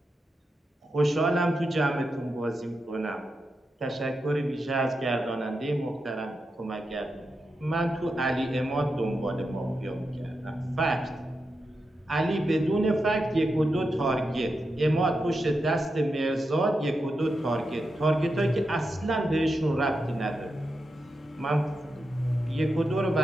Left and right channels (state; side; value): normal; both; correlation 0.87